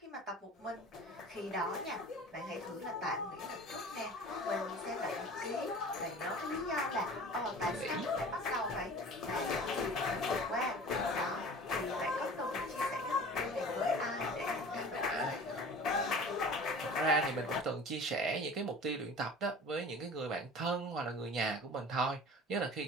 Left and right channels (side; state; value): both; normal; correlation 0.41